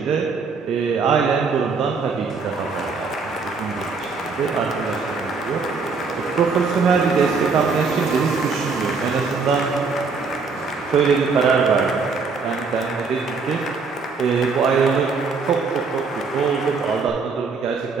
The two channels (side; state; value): left; quieter; 4.7 dB